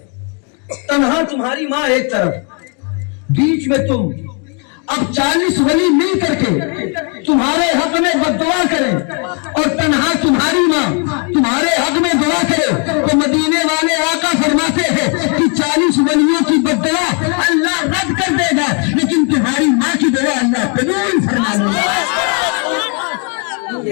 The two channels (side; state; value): right; quieter; 38.1 dB